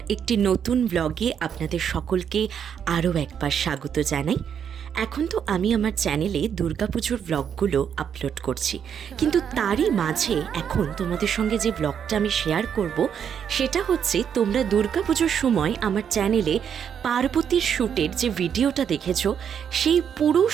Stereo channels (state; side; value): quieter; left; 8.1 dB